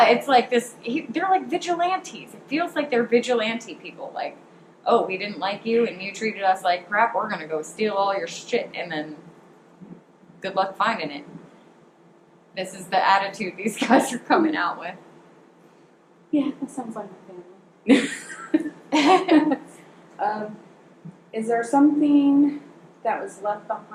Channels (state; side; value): identical; both; correlation 1.00